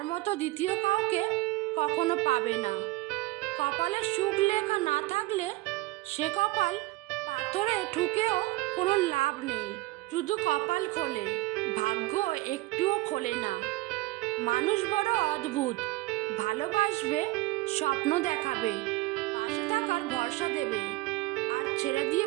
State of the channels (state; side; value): quieter; left; 19.8 dB